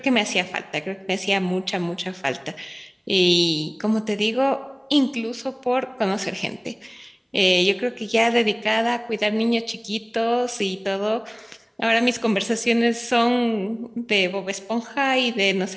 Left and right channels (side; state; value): both; identical; correlation 1.00